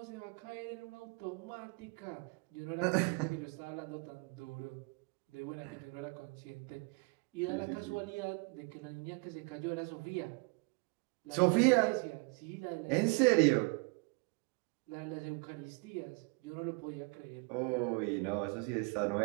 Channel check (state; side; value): quieter; left; 32.7 dB